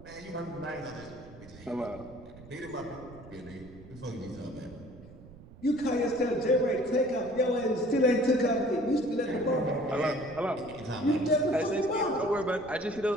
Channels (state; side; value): noise; right; rumble, 19 dB below the sound